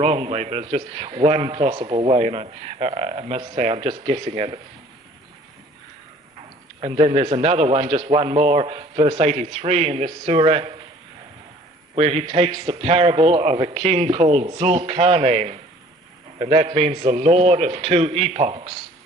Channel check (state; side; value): normal; both; correlation 0.52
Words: way, but it's just one possible way, and I must say I'm just guessing at it. And then there's another one, just one more, verse 83 in this surah, where he takes the parable of a king called Zulkarnain, and that means the Lord of two epochs.